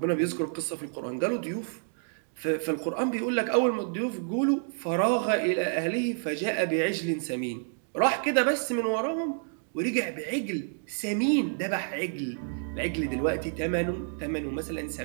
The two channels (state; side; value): silent; left; digital silence